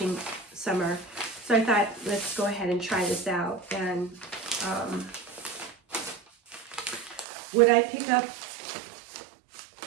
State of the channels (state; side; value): drops out; left; at 7.2 s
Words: summer. So I thought, let's go ahead and try this out. And would I pick up